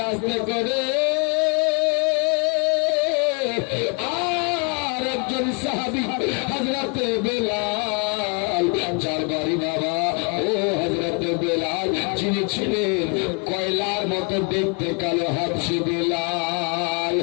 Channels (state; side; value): quieter; right; 34.5 dB